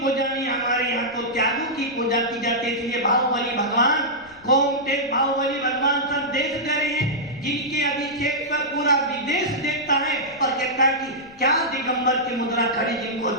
पूजा नहीं, हमारे यहाँ तो त्यागों की पूजा की जाती है। इसलिए बाहुबली भगवान, गोमते बाहुबली भगवान सब देश दे रहे हैं, जिनके अभिषेक पर पूरा विदेश देखता है और कहता है कि क्या दिगंबर की मुद्रा खड़ी, जिनको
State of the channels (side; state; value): left; noise; rumble, 27 dB below the sound